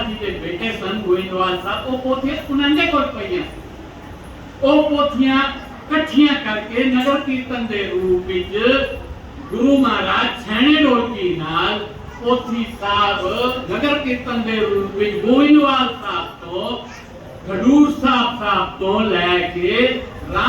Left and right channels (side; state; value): both; identical; correlation 1.00